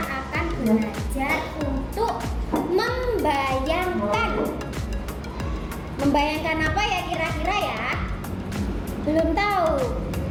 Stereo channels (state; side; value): identical; both; correlation 1.00